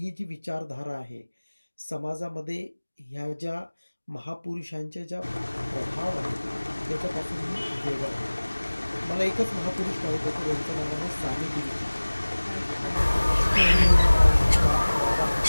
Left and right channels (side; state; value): both; inverted; correlation -1.00